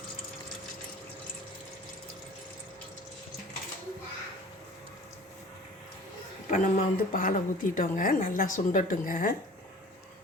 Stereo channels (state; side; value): normal; both; correlation 0.45